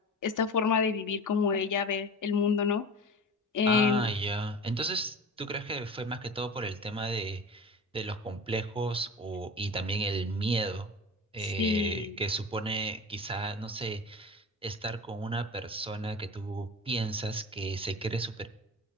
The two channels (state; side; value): normal; both; correlation 0.33